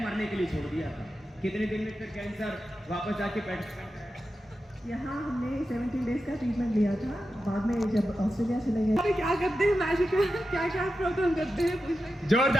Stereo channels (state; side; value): normal; both; correlation 0.91